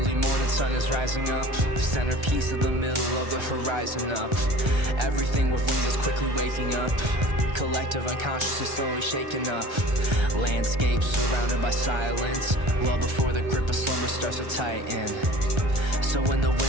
morning sun is rising up, centerpiece of the middle of the horizon up. Everything with wings is quickly waking up, collective unconsciousness slowly shaken up. Landscape surrounded by silence, well before the grip of slumber starts to tighten. So when the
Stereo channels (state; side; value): late; left; 1.3 ms